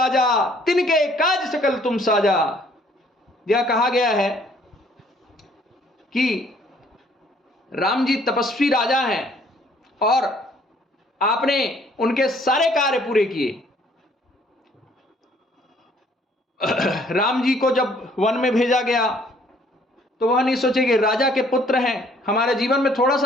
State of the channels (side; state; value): both; normal; correlation 0.61